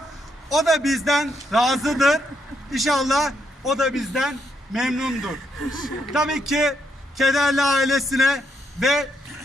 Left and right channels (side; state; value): both; normal; correlation 0.77